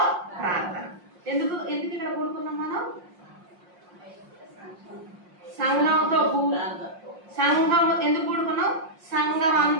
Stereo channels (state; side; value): late; left; 5.6 ms